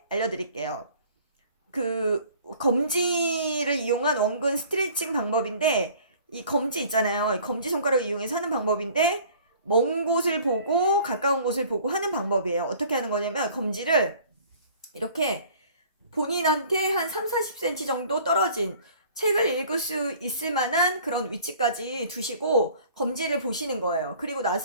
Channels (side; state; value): both; inverted; correlation -0.51